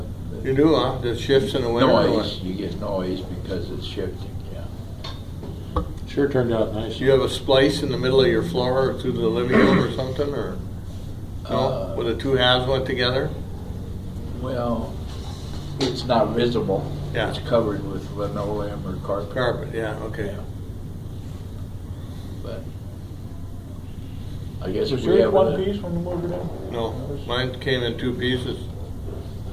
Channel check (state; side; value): identical; both; correlation 1.00